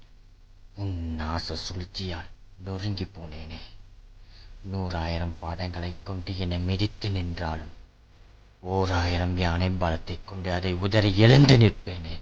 உன் நாச சூழ்ச்சியால் நொறுங்கி போனேனே. 100,000 பாதங்களைக் கொண்டு என்னை மிதித்து நின்றாலும் 1000 யானை பலத்தைக் கொண்டு அதை உதறி எழுந்து நிற்பேனே.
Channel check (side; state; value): both; identical; correlation 1.00